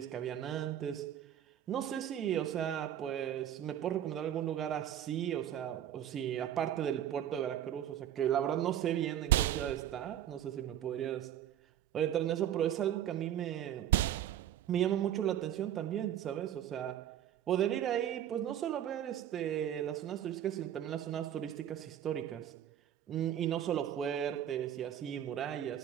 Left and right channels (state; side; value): quieter; left; 10.8 dB